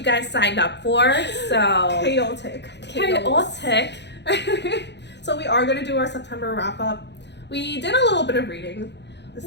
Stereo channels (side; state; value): right; late; 0.50 ms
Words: guys signed up for, so... Chaotic. So we are going to do our September wrap-up. We did a little bit of reading this